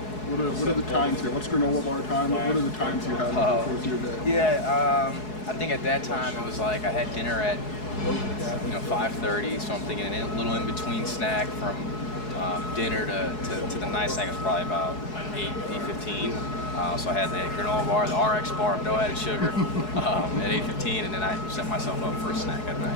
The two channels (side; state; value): right; late; 4.7 ms